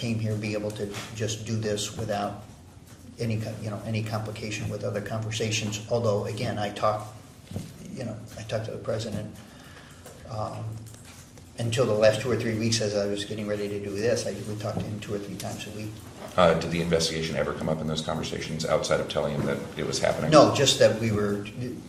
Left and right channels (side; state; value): both; identical; correlation 1.00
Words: here, be able to just do this without any complication with other conversations. Although, again, I talked to the president until the last 2 or 3 weeks as I was getting ready to do this. We talked to him 2 or 3 times a week. Did the investigation ever come up in those conversations outside of telling him that it was happening? No, just that we were